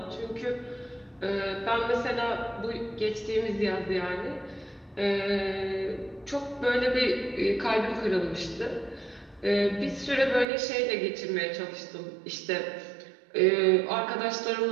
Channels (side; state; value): left; drops out; at 10.5 s